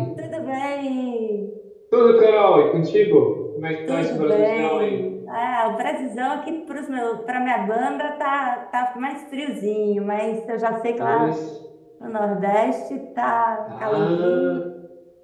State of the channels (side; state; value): both; identical; correlation 1.00